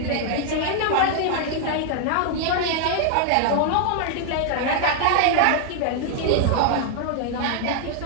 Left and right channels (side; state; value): both; different; correlation 0.00